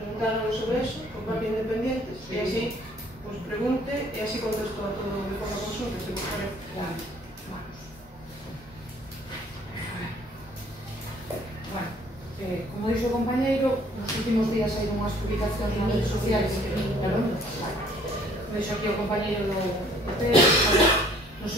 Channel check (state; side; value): normal; both; correlation 0.58